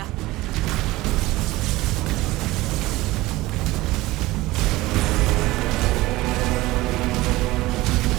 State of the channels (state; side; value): quieter; left; 19.0 dB